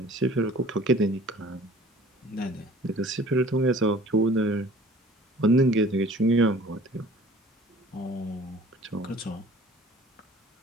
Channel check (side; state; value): both; normal; correlation 0.49